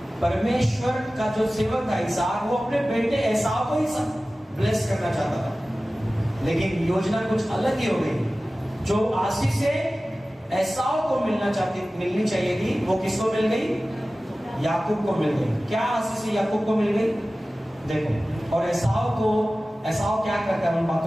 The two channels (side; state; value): both; normal; correlation 0.96